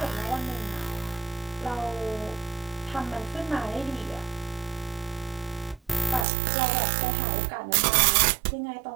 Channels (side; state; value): left; drops out; at 6.2 s